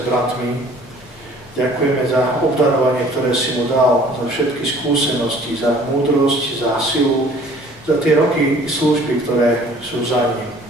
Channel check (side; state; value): both; normal; correlation 0.52